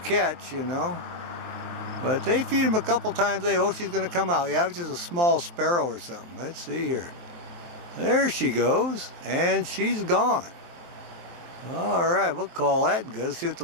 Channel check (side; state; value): left; late; 23 ms